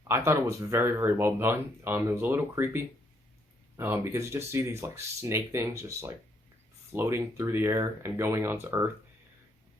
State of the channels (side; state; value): both; normal; correlation 0.72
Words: I thought it was very, very well done. It was a little creepy because you just see these like snake things just like floating through the air and going onto Earth.